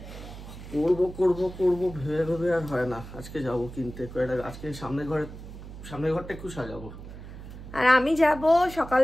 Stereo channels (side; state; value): right; noise; hum, 13 dB below the sound